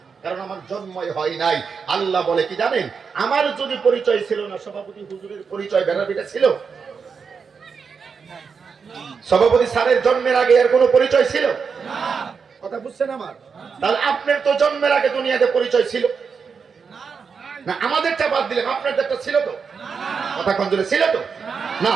কারণ আমার জন্মই হয় নাই। আল্লাহ বলে কি জানেন, আমার যদি পরিচয় ছিল না, সভাপতি হুজুরের পরিচয় ভেড়ার পিঠে ছিল? সভাপতি স্যারের জন্মের আগে এর কোনো পরিচয় ছিল না? কথা বুঝছেন আমার? তাহলে আপনার তো জন্মের আগে দুনিয়াতে পরিচয় ছিল না। আমাদেরটা বাদ দিলেন, আপনাদেরটা ছিল তো? কথা কোন জোরে ছিল তো? না,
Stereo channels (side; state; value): left; quieter; 5.7 dB